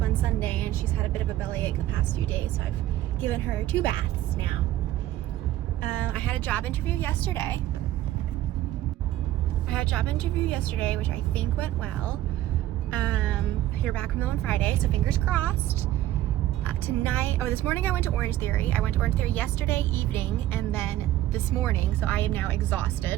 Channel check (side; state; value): left; quieter; 13.9 dB